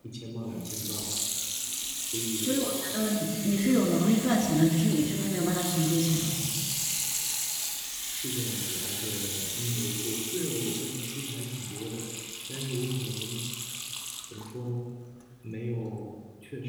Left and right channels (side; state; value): both; identical; correlation 1.00